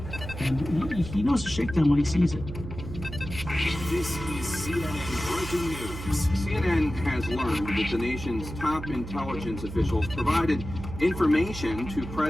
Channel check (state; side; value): noise; right; hum, 10 dB below the sound